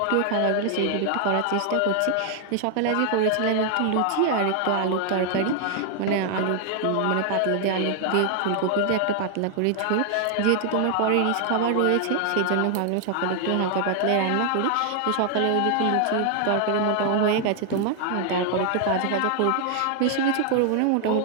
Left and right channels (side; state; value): both; different; correlation 0.00